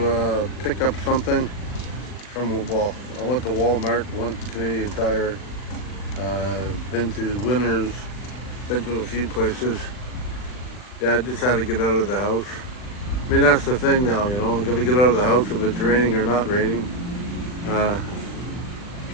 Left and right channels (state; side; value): late; right; 39 ms